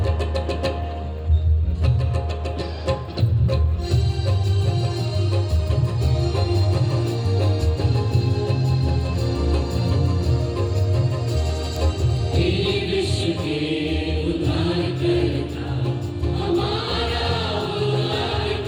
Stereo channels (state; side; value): identical; both; correlation 1.00